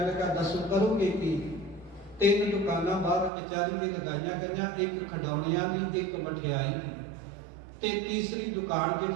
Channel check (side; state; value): left; drops out; at 3.3 s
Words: ਲੱਗਾ ਦੱਸੋ ਕਰੋਗੇ ਕੀ? 3 ਦੁਕਾਨਾਂ ਬਾਹਰ ਕਚਹਿਰੀ ਦੇ ਲਗਾਈਆਂ ਗਈਆਂ, ਇੱਕ ਖਿਡੌਣਿਆਂ ਦੀ, ਇੱਕ ਮਠਿਆਈ ਤੇ ਤੀਸਰੀ ਦੁਕਾਨ